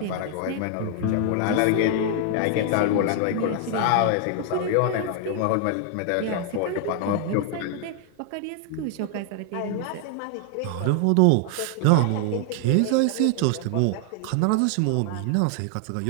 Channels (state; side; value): different; both; correlation 0.00